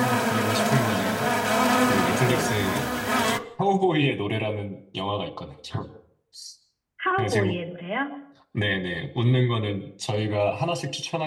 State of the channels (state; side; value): identical; both; correlation 1.00